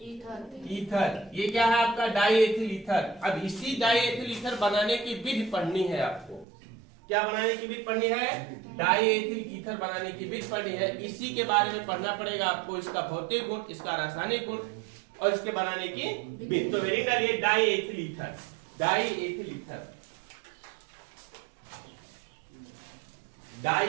ईथर। ये क्या है आपका डाई एथिल ईथर। अब इसी डाई एथिल ईथर बनाने की विधि पढ़नी है आपको। क्या बनाने की विधि पढ़नी है, डाई एथिल ईथर बनाने की विधि पढ़नी है। इसी के बारे में पढ़ना पड़ेगा आपको, इसका भौतिक गुण, इसका रासायनिक गुण, और इसके बनाने की विधि। तो हेडिंग डालिए die ethyl ether, die ethyl ether, die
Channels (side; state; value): left; drops out; at 6.5 s